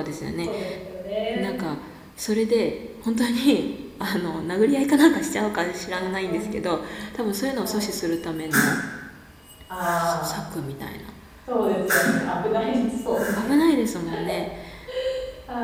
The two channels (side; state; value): both; identical; correlation 1.00